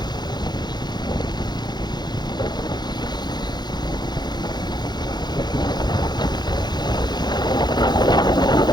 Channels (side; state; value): right; late; 0.21 ms